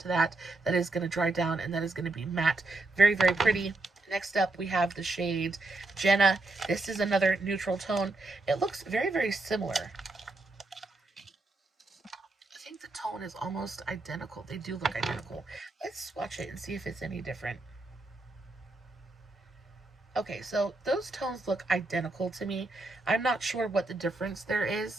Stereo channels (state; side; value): quieter; left; 3.1 dB